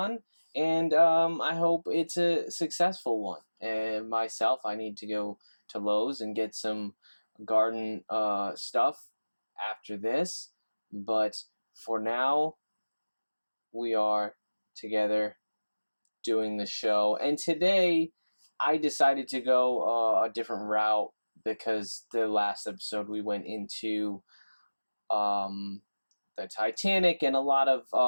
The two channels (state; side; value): inverted; both; correlation -1.00